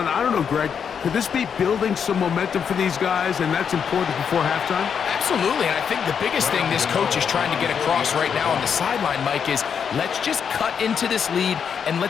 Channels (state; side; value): quieter; right; 7.1 dB